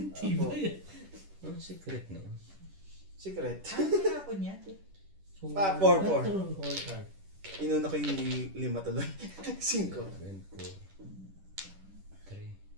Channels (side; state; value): left; late; 10 ms